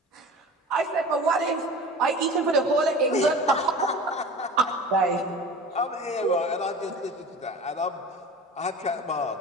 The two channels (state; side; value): normal; both; correlation 0.37